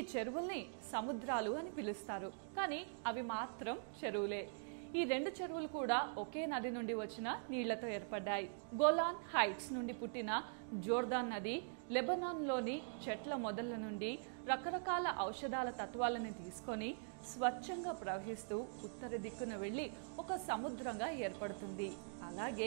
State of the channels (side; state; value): left; silent; digital silence